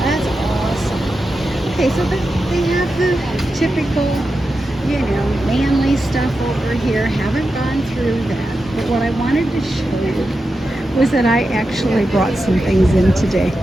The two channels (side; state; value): both; normal; correlation 0.90